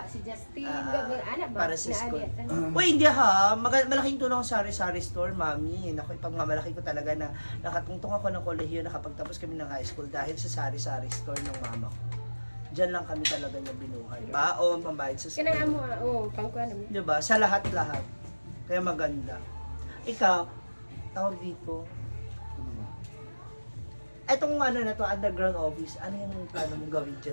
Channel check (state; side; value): inverted; both; correlation -1.00